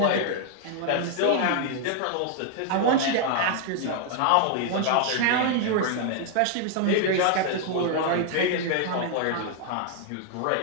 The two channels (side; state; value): both; different; correlation 0.00